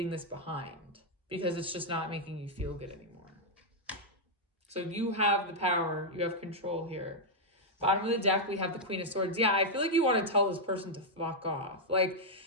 this behind, because it's just not making you feel good anymore. So you have the power, you have control here. Bottom of the deck, we have the Queen of Swords. Yeah, I feel like you want to tell this person to fuck off. Like,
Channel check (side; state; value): both; normal; correlation -0.03